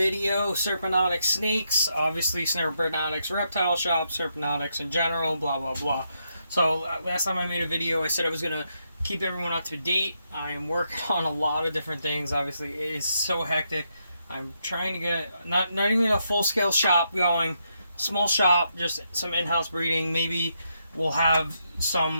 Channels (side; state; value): both; inverted; correlation -0.80